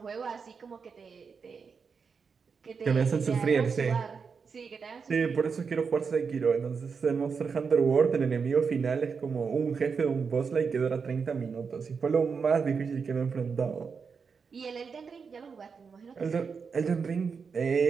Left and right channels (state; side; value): quieter; left; 5.6 dB